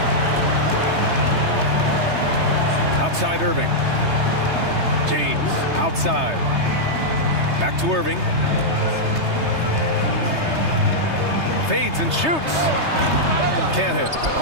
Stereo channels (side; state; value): left; late; 3.3 ms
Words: Outside Irving. James outside. Back to Irving. Fades and shoots. Can't hit.